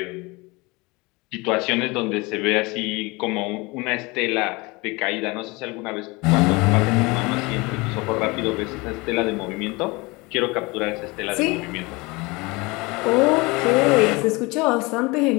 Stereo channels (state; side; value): quieter; right; 24.9 dB